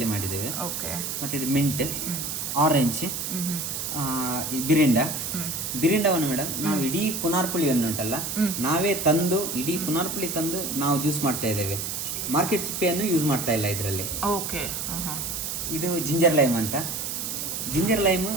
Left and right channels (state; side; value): noise; right; hiss, 4 dB below the sound